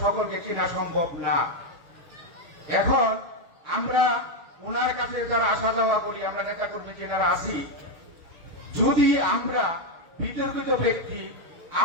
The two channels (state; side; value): late; left; 6.3 ms